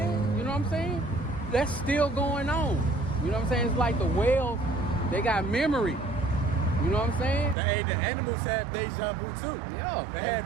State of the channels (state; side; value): drops out; left; at 7.6 s